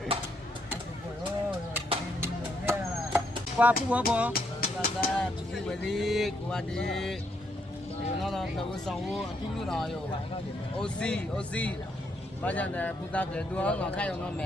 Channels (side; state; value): both; normal; correlation 0.75